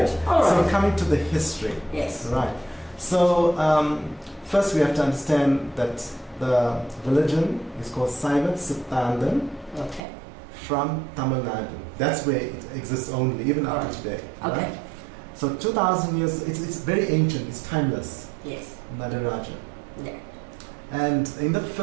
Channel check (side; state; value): left; drops out; at 10.0 s